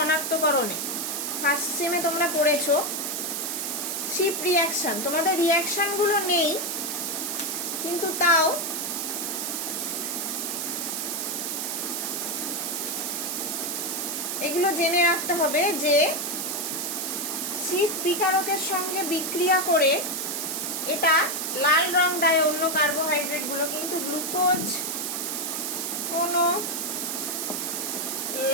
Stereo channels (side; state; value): right; noise; hiss, 2 dB below the sound